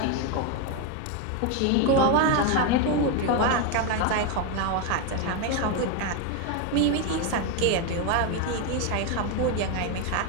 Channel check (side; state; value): both; different; correlation 0.02